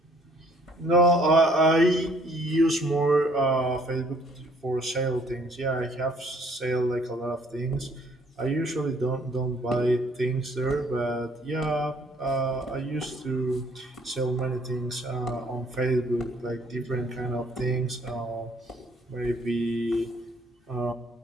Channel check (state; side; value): normal; both; correlation 0.61